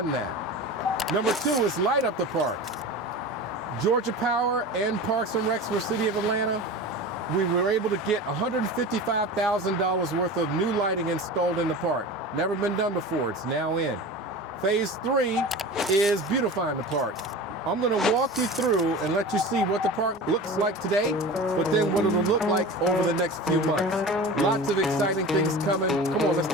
that. Number 2 is light up the parks. Georgia Power and Parks and Recs for City of Atlanta, we were able to get $155,000 worth of new lighting installed in the park. Never been done before, it's now in. Phase 3 is beautifying the park. I'm gonna walk you through and let you see what the park looks like today, but then what it'll look like over the next few months. Lots of exciting things coming. Come on, let's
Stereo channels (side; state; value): both; normal; correlation 0.33